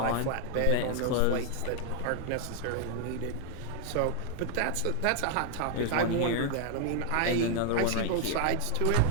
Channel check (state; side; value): different; both; correlation 0.00